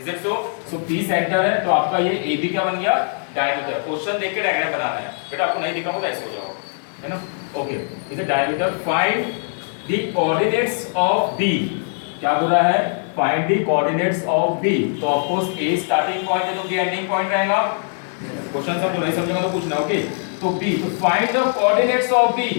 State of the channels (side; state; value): right; silent; 65 dB below the other